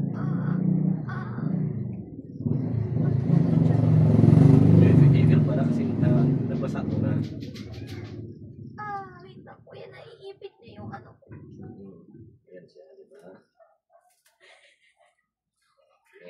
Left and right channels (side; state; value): both; identical; correlation 1.00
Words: Email pala kasi nabasa ko na. Wait lang, kuya, naiipit na yung ano ko. Yan siya, di ba?